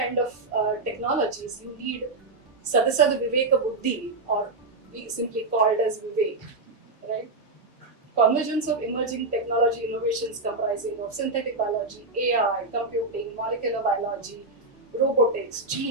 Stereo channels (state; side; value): quieter; left; 3.3 dB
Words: of technologies, you need Sadasad Viveka Buddhi, or we simply called as Vivek, right? Convergence of emerging technology innovations comprising of synthetic biology, AI, computing, molecular biology, robotics,